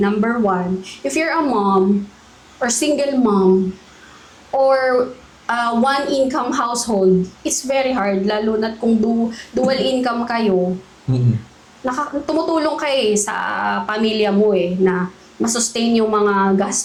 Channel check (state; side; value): identical; both; correlation 1.00